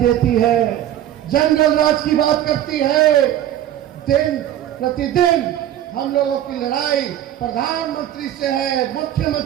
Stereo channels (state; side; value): quieter; left; 11.9 dB